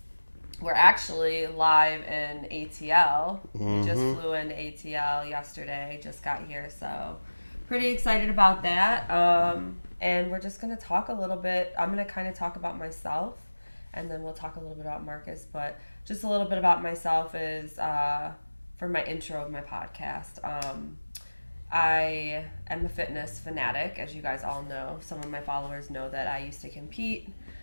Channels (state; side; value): inverted; both; correlation -1.00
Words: We're actually live in ATL. We just flew into ATL yesterday, just got here, so pretty excited about that. And we're just going to talk a little bit. I'm going to kind of talk about myself, and then we'll talk a little bit about Marcus, but just a little bit about myself is for my intro of my podcast. I am a fitness fanatic, as you guys all know. Some of my followers know that I used to compete.